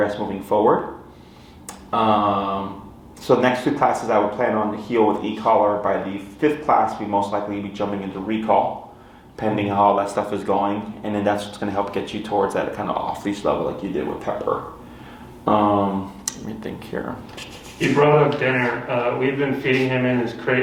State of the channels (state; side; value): identical; both; correlation 1.00